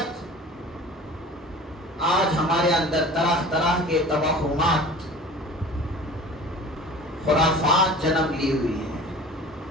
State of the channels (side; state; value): both; normal; correlation 0.41